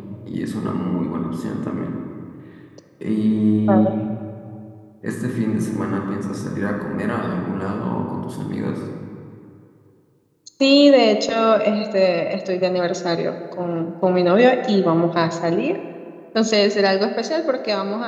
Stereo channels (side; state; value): both; identical; correlation 1.00